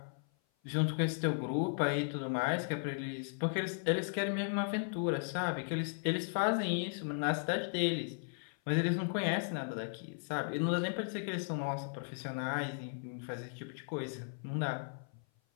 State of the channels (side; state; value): right; silent; 54 dB below the other